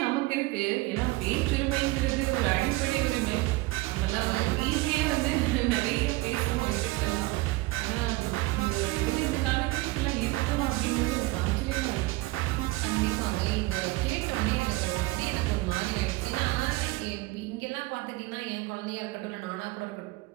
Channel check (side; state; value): left; quieter; 20.8 dB